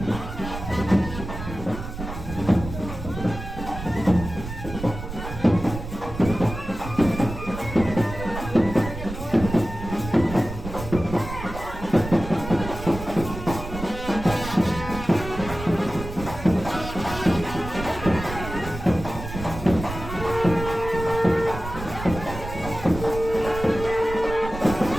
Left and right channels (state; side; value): noise; right; rumble, 9 dB below the sound